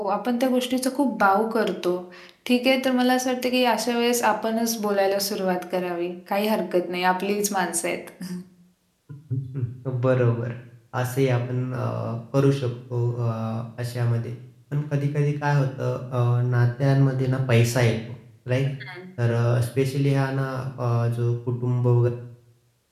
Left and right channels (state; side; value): identical; both; correlation 1.00